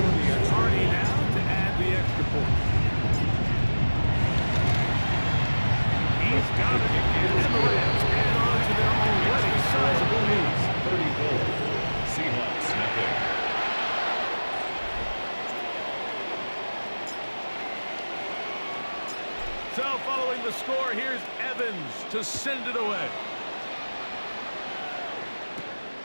Hardy now to add the extra point. He's got it. And the Rams add on to their already sizable lead. 34. Seahawks, nothing. So following the score, here's Evans to send it away.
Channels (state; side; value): inverted; both; correlation -1.00